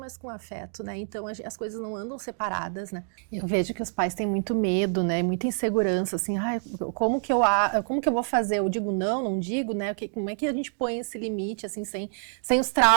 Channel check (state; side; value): silent; left; 60 dB below the other